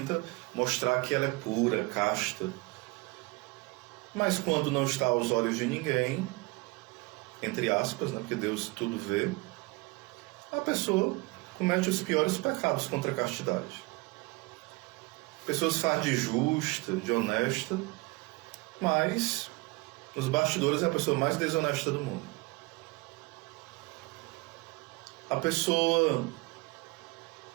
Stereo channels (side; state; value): left; quieter; 24.9 dB